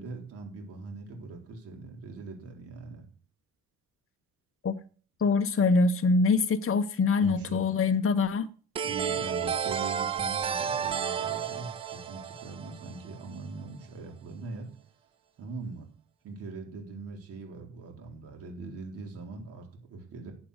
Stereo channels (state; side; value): normal; both; correlation 0.35